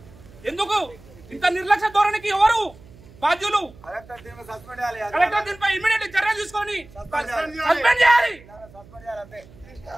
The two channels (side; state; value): right; noise; hum, 23 dB below the sound